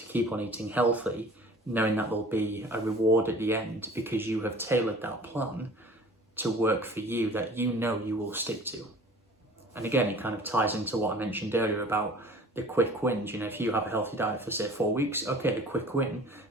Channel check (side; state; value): both; normal; correlation 0.46